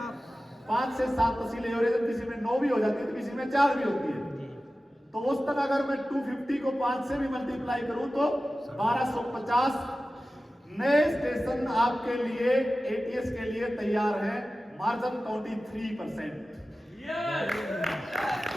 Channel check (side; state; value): both; normal; correlation 0.95